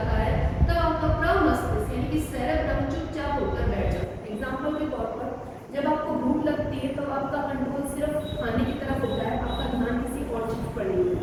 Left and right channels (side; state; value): both; identical; correlation 1.00